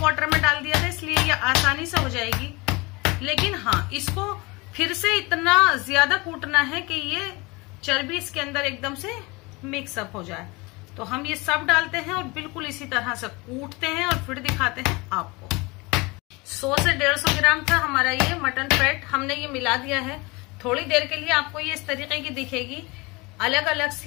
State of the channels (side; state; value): right; quieter; 25.1 dB